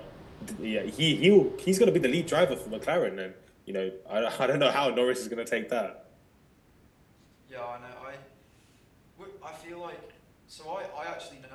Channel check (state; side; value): identical; both; correlation 1.00